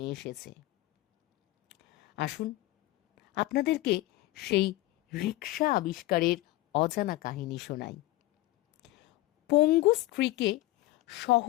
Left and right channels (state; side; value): quieter; right; 17.5 dB